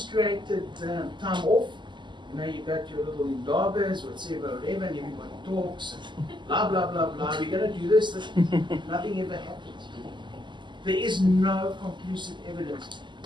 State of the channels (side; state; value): left; late; 0.22 ms